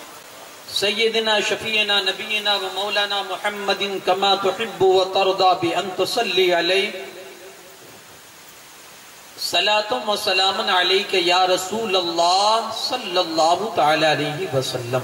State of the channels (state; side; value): identical; both; correlation 1.00